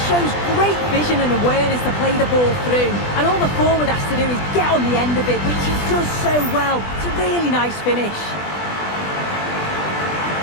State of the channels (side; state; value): right; late; 20 ms